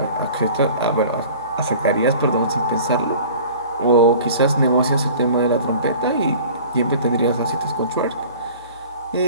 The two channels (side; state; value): both; inverted; correlation -0.44